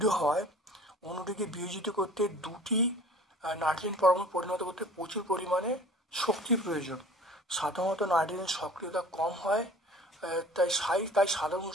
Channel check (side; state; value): both; normal; correlation 0.46